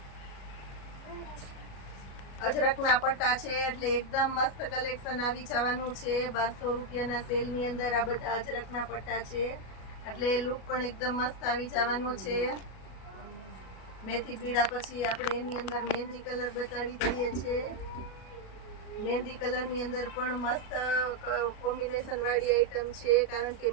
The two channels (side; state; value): right; late; 37 ms